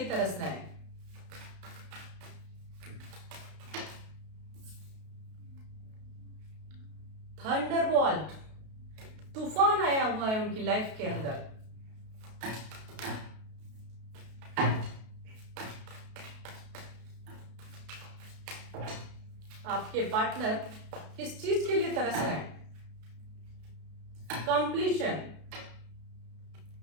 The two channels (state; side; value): late; left; 32 ms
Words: तरस रहे हैं। थंडरबोल्ट, तूफान आया हुआ है उनकी लाइफ के अंदर। आपके पार्टनर किस चीज के लिए तरस रहे हैं? कंप्लीशन,